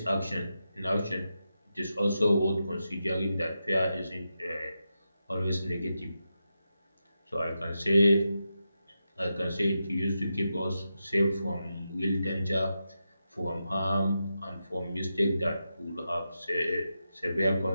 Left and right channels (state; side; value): inverted; both; correlation -0.88